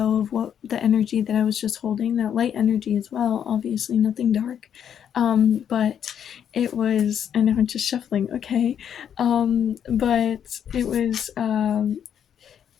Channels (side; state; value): right; quieter; 8.8 dB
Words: of what the energy that I was just holding, that light energy as well, obviously nothing dark. But it was, and I'm just shuffling, okay. But it was